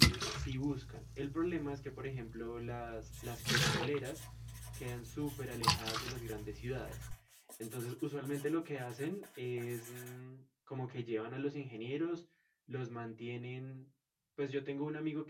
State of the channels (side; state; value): both; identical; correlation 1.00